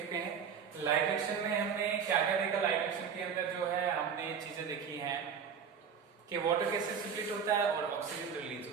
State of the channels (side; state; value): left; quieter; 7.0 dB